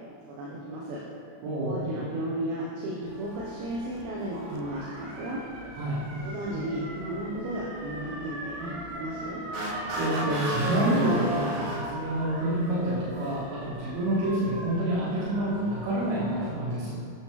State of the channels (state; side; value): late; left; 35 ms